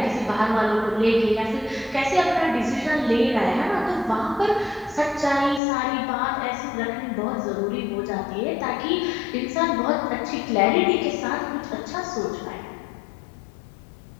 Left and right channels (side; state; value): right; drops out; at 5.6 s